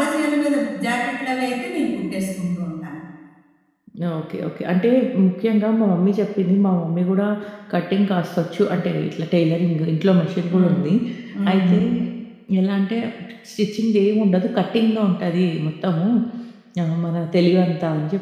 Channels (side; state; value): both; identical; correlation 1.00